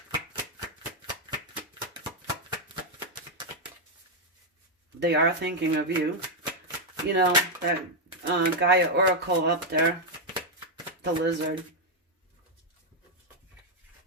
they are thinking of you. You know, that Gaia Oracle up there, the lizard.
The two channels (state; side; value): normal; both; correlation 0.00